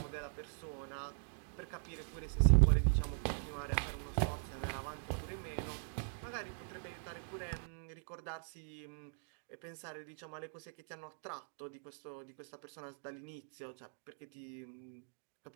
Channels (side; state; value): left; silent; digital silence